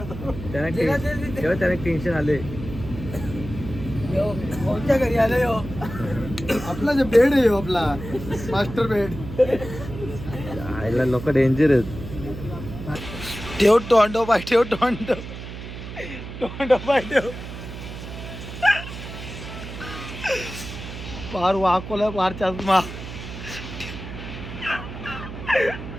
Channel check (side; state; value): right; noise; hum, 10 dB below the sound